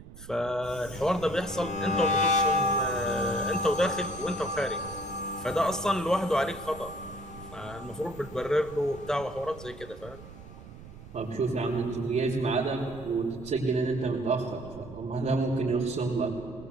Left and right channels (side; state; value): right; noise; rumble, 16 dB below the sound